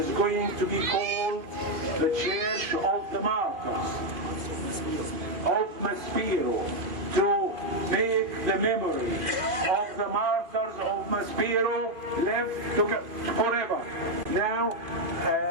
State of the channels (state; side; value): late; left; 2.5 ms